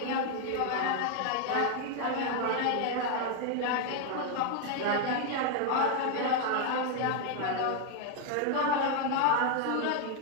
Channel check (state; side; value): different; both; correlation 0.01